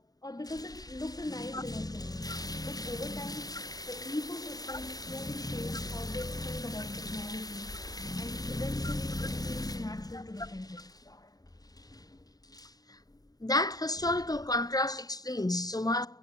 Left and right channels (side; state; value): right; late; 0.18 ms